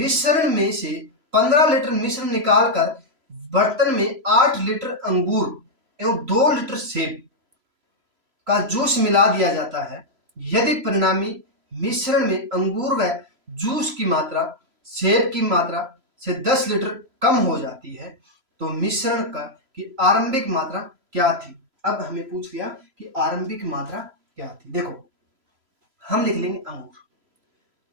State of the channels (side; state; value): left; late; 3.0 ms